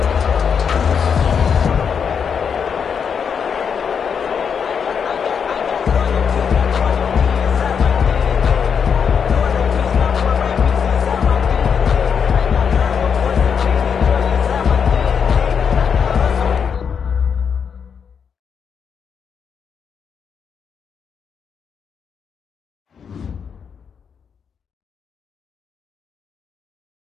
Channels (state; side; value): quieter; right; 6.8 dB